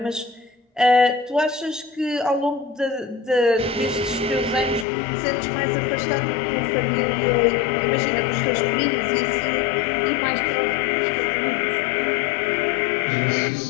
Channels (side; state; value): right; drops out; at 4.9 s